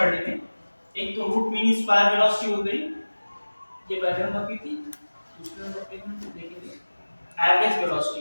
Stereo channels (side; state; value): both; inverted; correlation -1.00